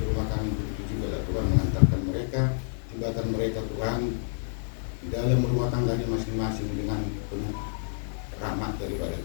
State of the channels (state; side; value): silent; right; digital silence